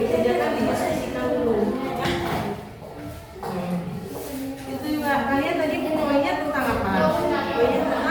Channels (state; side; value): identical; both; correlation 1.00